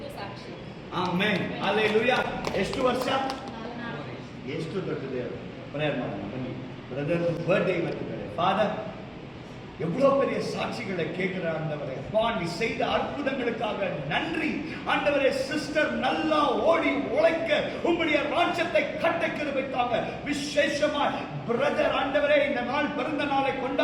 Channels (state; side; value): identical; both; correlation 1.00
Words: ಸಾಕ್ಷಿ. ಆಮೆನ್. ಹಲ್ಲೆಲೂಯಾ. ಎಷ್ಟು ವರ್ಷ? ಎಷ್ಟು ದೊಡ್ಡ ದೇವರು. ಪ್ರೇಯರ್ ಮಾಡೋಣ ಬನ್ನಿ. Brother birthday ಇವತ್ತಿದ್ದಾರೆ. ஃபாதர், எவ்வளோ பெரிய சாட்சிகளை கேட்கிற ஆண்டவரே, நீ செய்த அற்புதங்களுக்காக நன்றி ஆண்டவரே. சிஸ்டர் நல்லா ஓடி உழைக்க உம்முடைய ராஜ்யத்தை கட்ட கிருபைக்காக விசேஷமாய் பிரதர் ஆண்டவரே இந்த நாள் பிறந்த நாளை